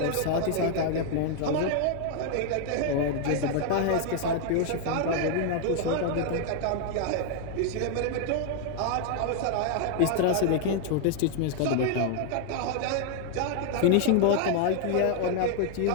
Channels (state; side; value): different; both; correlation 0.01